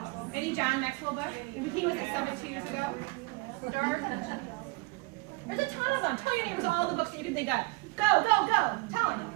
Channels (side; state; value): left; quieter; 25.5 dB